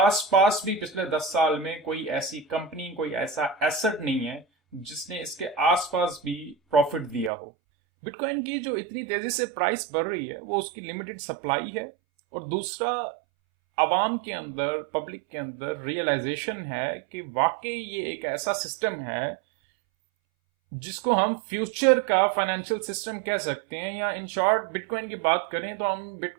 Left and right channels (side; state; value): left; drops out; at 7.3 s